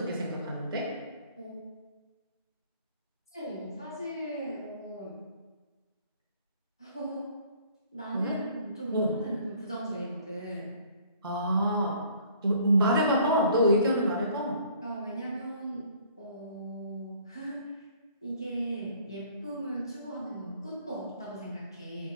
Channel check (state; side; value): inverted; both; correlation -0.56